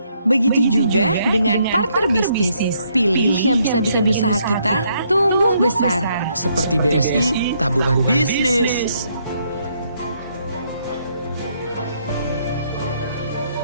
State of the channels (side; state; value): both; inverted; correlation -0.72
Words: Begitu juga dengan partner bisnis. Pilih yang bisa bikin usaha kita tumbuh besar. Seperti BSI, tabungan bisnis.